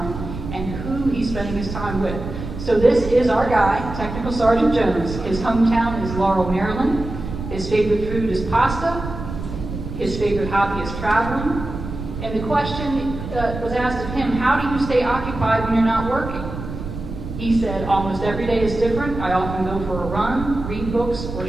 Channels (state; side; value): noise; right; rumble, 8 dB below the sound